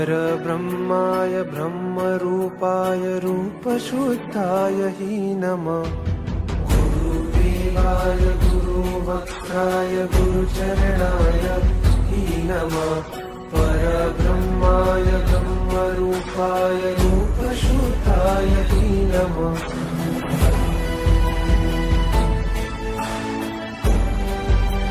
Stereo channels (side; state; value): both; identical; correlation 1.00